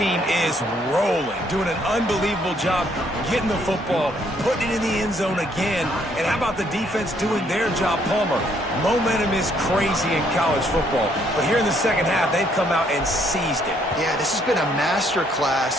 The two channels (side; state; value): both; normal; correlation 0.68